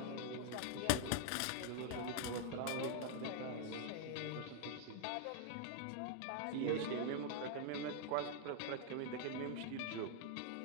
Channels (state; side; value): different; both; correlation -0.01